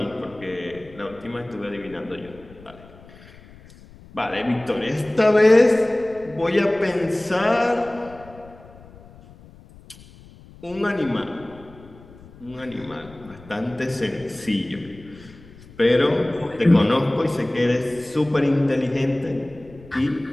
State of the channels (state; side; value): noise; left; rumble, 22 dB below the sound